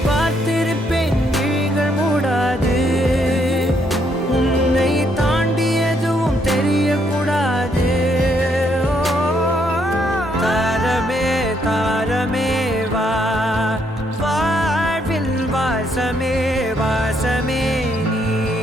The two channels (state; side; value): normal; both; correlation 0.73